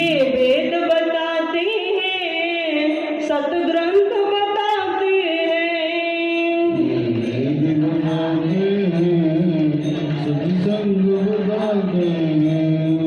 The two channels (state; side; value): identical; both; correlation 1.00